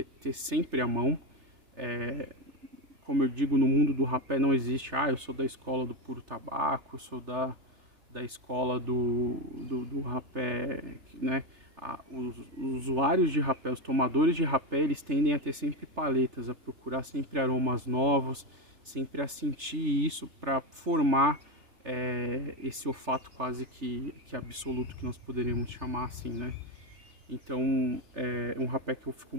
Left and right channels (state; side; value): late; left; 3.3 ms